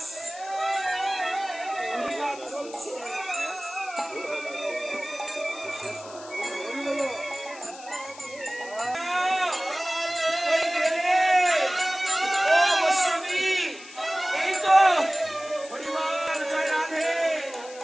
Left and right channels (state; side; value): noise; left; hiss, 18 dB below the sound